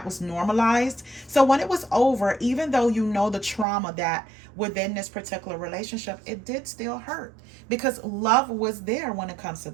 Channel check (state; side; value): drops out; left; at 3.7 s